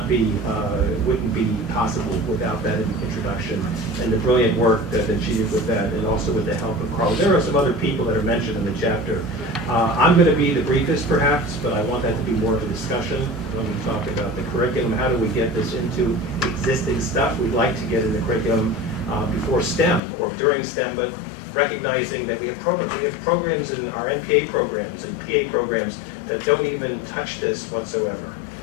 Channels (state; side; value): drops out; right; at 20.0 s